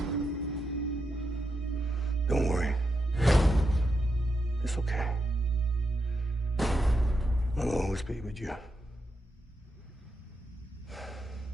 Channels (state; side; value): normal; both; correlation 0.85